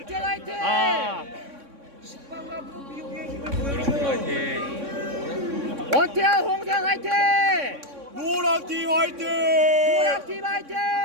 화이팅 아, 원태현 홍세원 화이팅 노랑팀 화이팅. 노랑팀 화이팅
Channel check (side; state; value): left; late; 3.6 ms